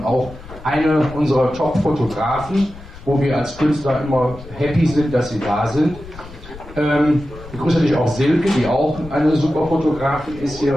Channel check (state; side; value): noise; left; rumble, 16 dB below the sound